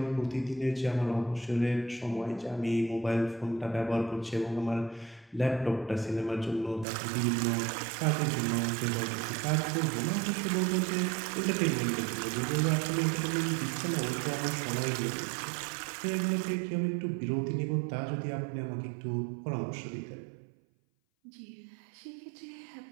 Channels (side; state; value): left; drops out; at 6.9 s